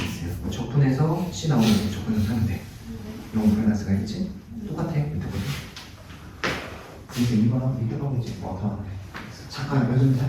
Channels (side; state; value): both; identical; correlation 1.00